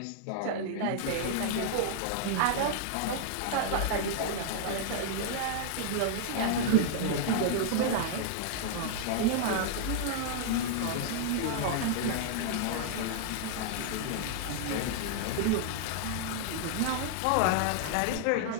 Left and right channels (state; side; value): different; both; correlation -0.01